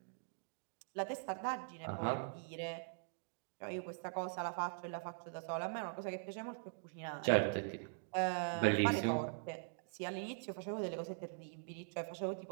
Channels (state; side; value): silent; left; digital silence